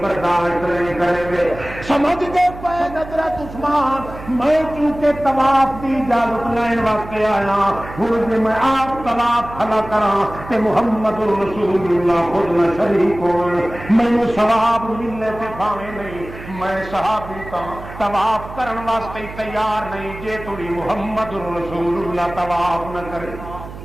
برداشت نہیں کریں گے. سمجھ گئے پے حضرت عثمان میں چونکہ طواف کی اجازت لین واسطے آیا ہوں جی میں آپ طواف کھلا کرا تے محمد رسول اللہ خود نہ شریک ہوئے مینوں ثواب ملنے سے بھاوے نہیں میں صحابی کا طواف کرن واسطے تیار نہیں جے تھوڑی محمد رسول اللہ طواف نہ کرے.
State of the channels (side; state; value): right; noise; hum, 14 dB below the sound